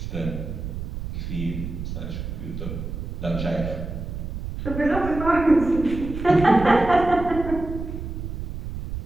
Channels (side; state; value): right; noise; rumble, 7 dB below the sound